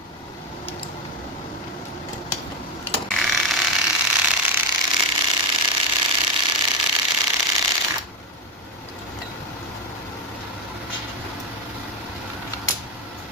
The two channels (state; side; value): normal; both; correlation 0.11